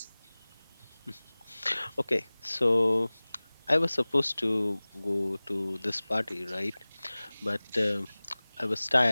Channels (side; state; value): both; inverted; correlation -1.00